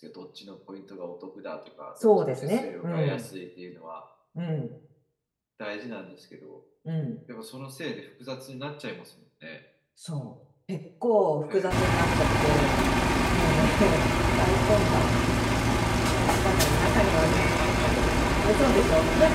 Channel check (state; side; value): identical; both; correlation 1.00